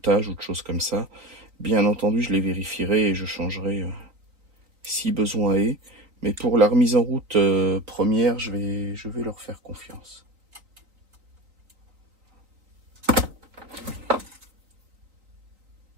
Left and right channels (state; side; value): late; left; 3.9 ms